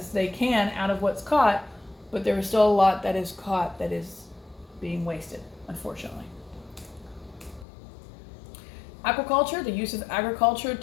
they can out of what's caught, but there is still a lot that is caught that is being wasted, unfortunately. Aquaculture, the use of agriculture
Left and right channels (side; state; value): right; drops out; at 7.7 s